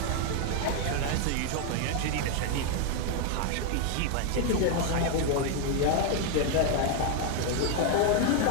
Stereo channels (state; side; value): different; both; correlation 0.01